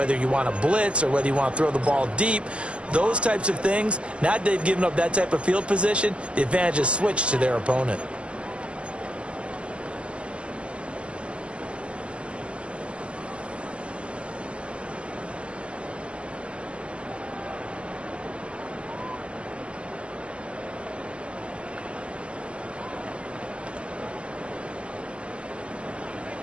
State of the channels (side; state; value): left; late; 0.054 ms